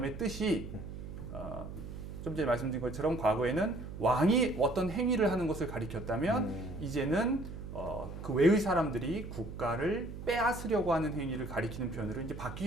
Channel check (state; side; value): noise; right; hum, 10 dB below the sound